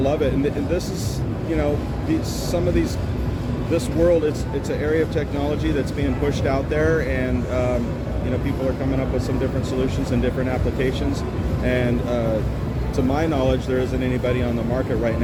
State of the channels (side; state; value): both; identical; correlation 1.00